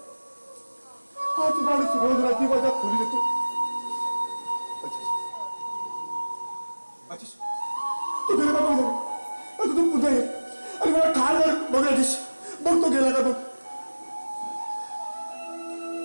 हाच माणूस रोज रात्री माझ्या खोलीत येतो. राजेश, तू गेला का बघ. आता तू पुन्हा ये आणि मला ठार मार. बघ राजेश, बघ तो गेला का बघ.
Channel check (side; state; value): both; inverted; correlation -1.00